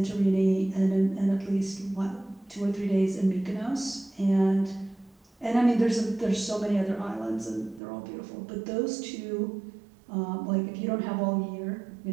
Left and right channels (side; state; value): left; drops out; at 7.8 s